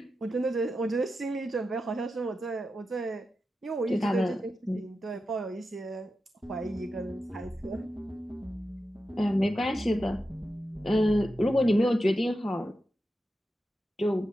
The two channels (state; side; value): normal; both; correlation 0.90